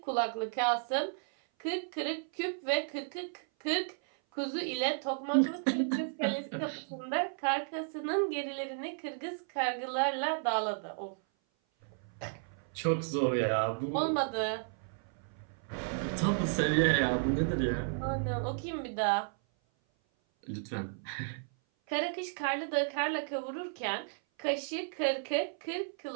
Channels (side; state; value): left; silent; 55 dB below the other